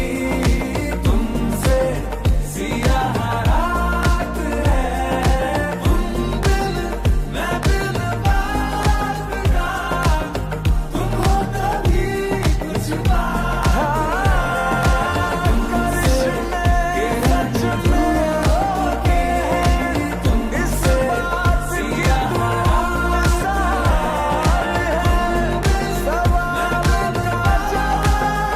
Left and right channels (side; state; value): both; identical; correlation 1.00